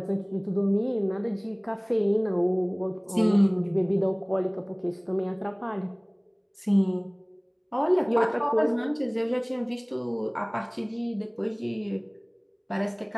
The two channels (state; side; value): identical; both; correlation 1.00